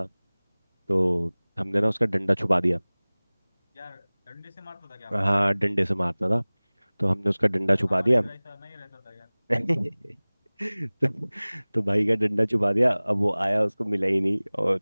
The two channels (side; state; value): both; inverted; correlation -1.00